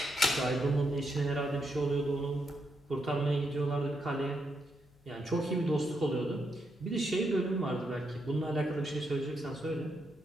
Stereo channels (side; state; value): left; noise; hum, 29 dB below the sound